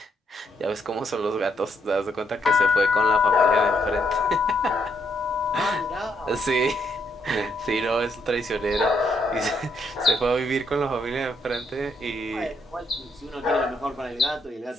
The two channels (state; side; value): normal; both; correlation 0.74